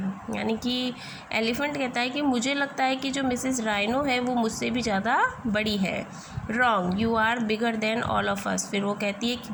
यानी कि एलिफेंट कहता है कि मुझे लगता है कि जो मिसेस राइनो है वो मुझसे भी ज़्यादा बड़ी है. Wrong, you are bigger than all of us, फिर वो कहती है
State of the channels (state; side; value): identical; both; correlation 1.00